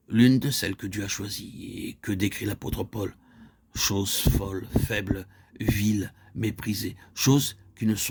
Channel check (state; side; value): identical; both; correlation 1.00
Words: L'une de celles que Dieu a choisies et que décrit l'apôtre Paul. Choses folles, faibles, viles, méprisées, choses qui ne